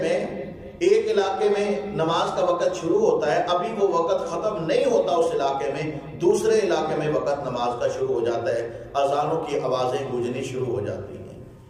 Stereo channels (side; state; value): both; identical; correlation 1.00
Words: ایک علاقے میں نماز کا وقت شروع ہوتا ہے، ابھی وہ وقت ختم نہیں ہوتا اس علاقے میں، دوسرے علاقے میں وقت نماز کا شروع ہو جاتا ہے، اذانوں کی آوازیں گونجنی شروع ہو جاتی ہیں،